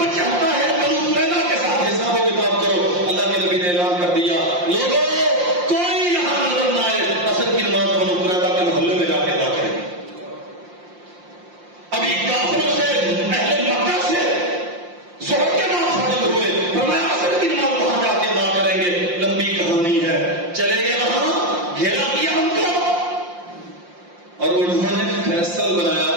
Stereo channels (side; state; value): left; late; 5.7 ms